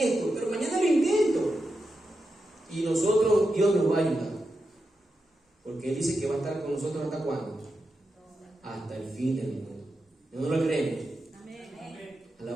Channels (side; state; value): both; normal; correlation 0.88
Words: pero mañana lo intento. Y nosotros, Dios nos va a ayudar, porque Él dice que va a estar con nosotros ¿hasta cuándo? Hasta el fin del mundo. ¿No lo creemos? Amén.